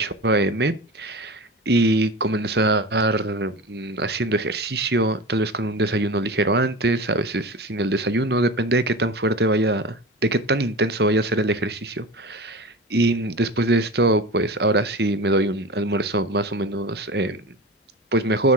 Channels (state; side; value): normal; both; correlation 0.31